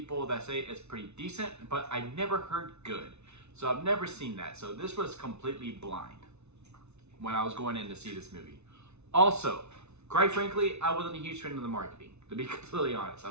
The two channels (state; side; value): late; left; 0.81 ms